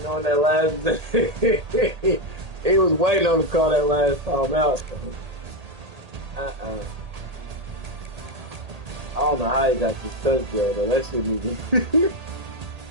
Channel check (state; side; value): late; left; 1.8 ms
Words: that last he was waiting on to call that last time out. I don't know how he got this touchdown though. That shouldn't even.